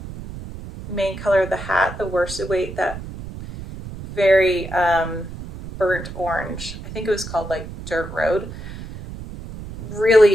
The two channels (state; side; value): noise; right; rumble, 11 dB below the sound